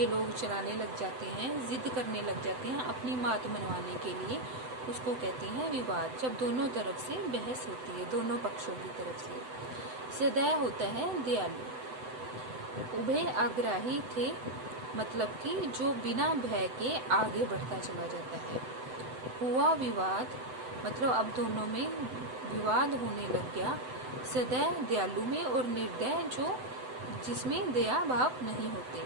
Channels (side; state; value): left; late; 7.9 ms